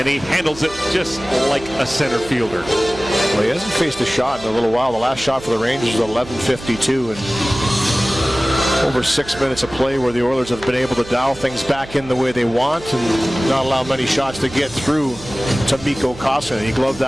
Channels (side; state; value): right; noise; hum, 18 dB below the sound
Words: he handles it just like a center fielder. Well, he hasn't faced a shot in a little while. The last shot for the Rangers was 11:52, and over 6 minutes of play where the Oilers have been able to dial things back in the way they want and not allow many shots to get through to Mikko Koskinen. He gloved